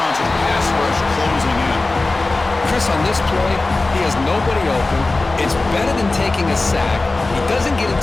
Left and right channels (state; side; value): quieter; right; 3.3 dB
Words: and the pass rush closing in. Chris, on this play, he has nobody open. It's better than taking a sack. He doesn't get